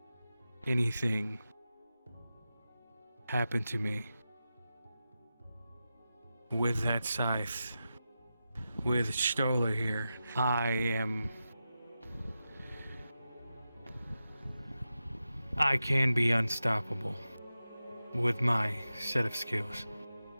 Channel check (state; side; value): inverted; both; correlation -0.91